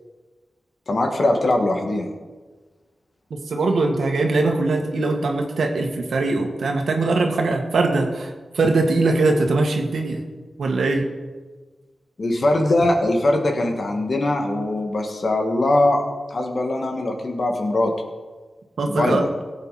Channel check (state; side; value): normal; both; correlation 0.90